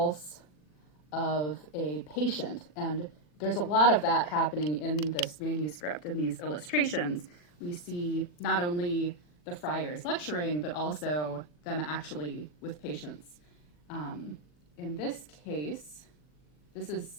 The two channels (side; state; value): right; late; 40 ms